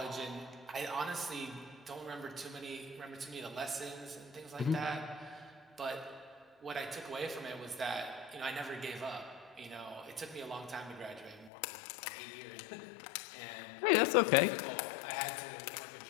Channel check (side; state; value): right; drops out; at 11.5 s